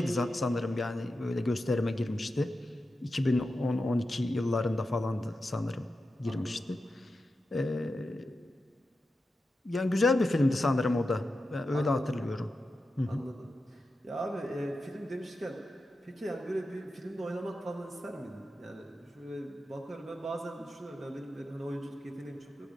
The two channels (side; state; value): both; normal; correlation 0.90